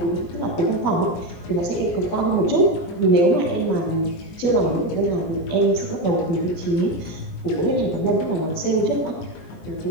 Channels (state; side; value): late; right; 17 ms